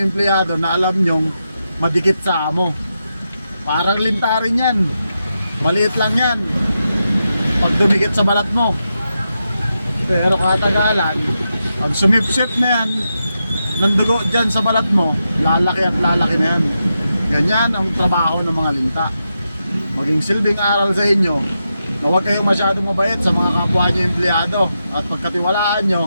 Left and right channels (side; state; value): both; inverted; correlation -0.87